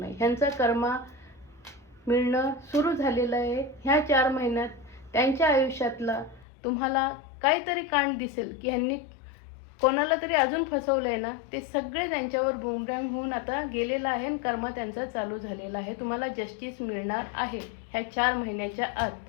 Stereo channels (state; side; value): drops out; right; at 6.5 s